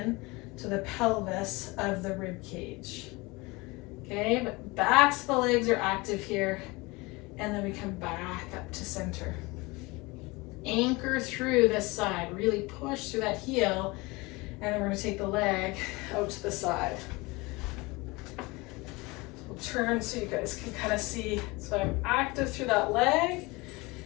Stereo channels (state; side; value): quieter; right; 24.1 dB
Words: to the pelvis of the rib cage. Okay, but backs of the legs are active here, and then we come back up to center. Anchor through this side, really push through that heel, and then we're going to take the leg out to the side. We'll turn so you guys can kind of see. So I'm active through that leg,